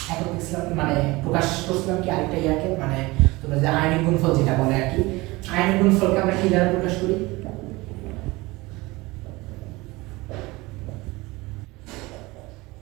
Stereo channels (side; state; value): left; quieter; 22.0 dB